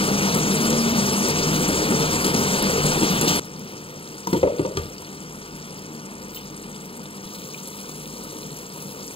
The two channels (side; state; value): right; late; 0.27 ms